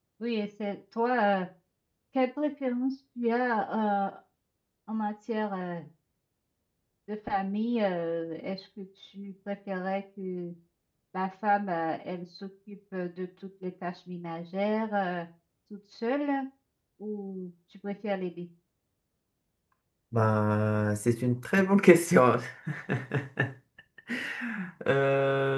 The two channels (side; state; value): both; identical; correlation 1.00